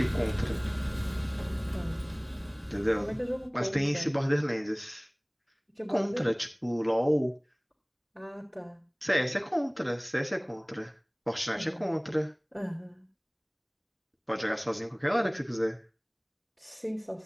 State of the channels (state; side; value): identical; both; correlation 1.00